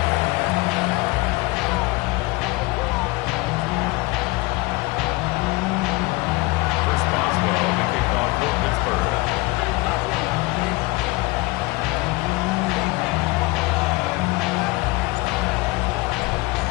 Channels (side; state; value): right; quieter; 23.3 dB